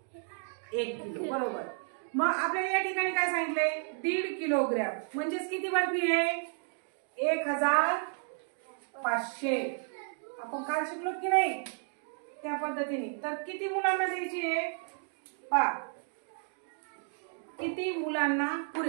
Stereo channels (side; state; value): left; silent; 56 dB below the other